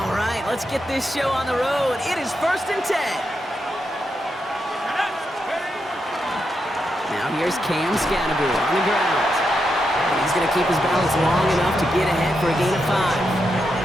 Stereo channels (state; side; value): normal; both; correlation 0.84